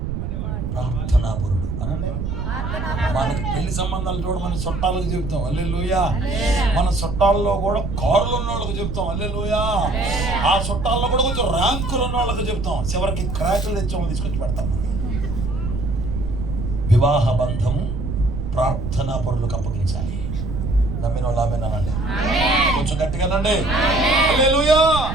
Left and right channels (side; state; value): right; noise; rumble, 4 dB below the sound